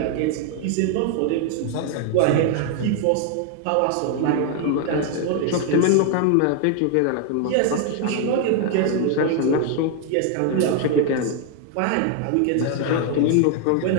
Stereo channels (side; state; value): both; different; correlation 0.01